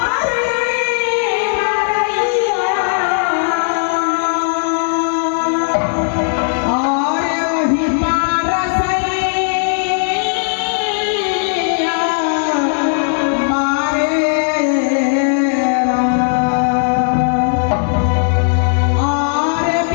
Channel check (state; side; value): silent; right; digital silence